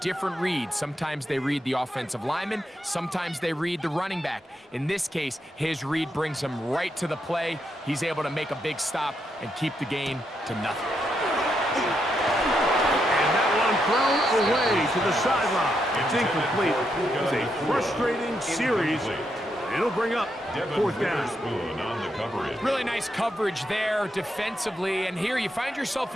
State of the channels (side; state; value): both; normal; correlation 0.81